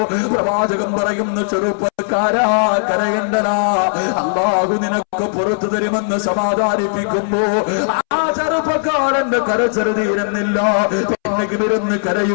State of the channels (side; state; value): right; silent; 68 dB below the other